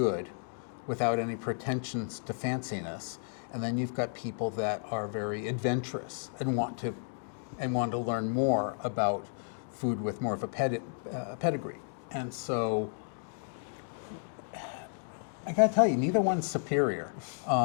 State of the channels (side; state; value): right; silent; digital silence